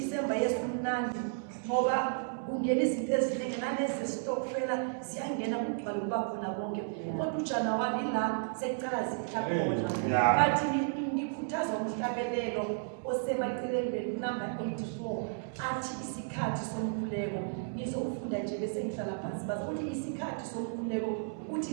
Yesu mnandi ngoba kungena izinto eziningi nalezi stokfela ziyangena kugcwala kuba khona bonke kodwa uJanuwari la sekucala zithakhona bathi ngikhuthazwa umhlabelelo osemaceleni number 84 athi isikhathi somkhuleko. Ngizofunda nje bese ngihlala phansi bazothi isikhathi somkhuleko uthi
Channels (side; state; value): left; silent; 56 dB below the other